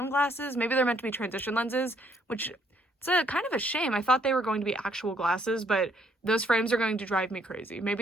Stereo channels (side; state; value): both; normal; correlation 0.67